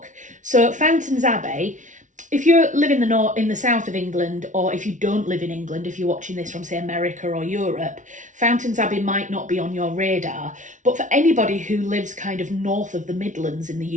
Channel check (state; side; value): late; left; 0.37 ms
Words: So Fountains Abbey, if you live in the south of England, or if you don't live in England, if you're watching this from, say, America or Europe, Fountains Abbey might not be on your radar. But for anybody who lives kind of north of the Midlands in